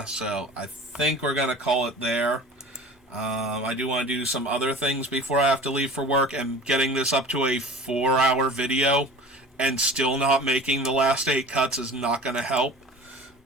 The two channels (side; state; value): both; normal; correlation 0.40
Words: so I think we're going to call it there. I do want to do some other things before I have to leave for work, and getting this up to a 4-hour video and still not making the last 8 cuts is not going to help.